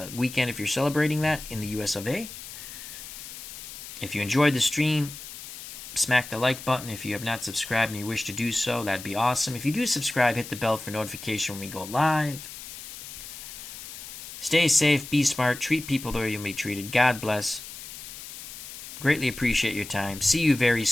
weekend if you're celebrating that in the US of A. If you enjoyed the stream, smack the like button. If you have not subscribed and you wish to do so, that'd be awesome. If you do subscribe, hit the bell for notification when we go live. Stay safe, be smart, treat people the way you'll be treated. God bless. Greatly appreciate your time. See you very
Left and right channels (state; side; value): noise; left; hiss, 12 dB below the sound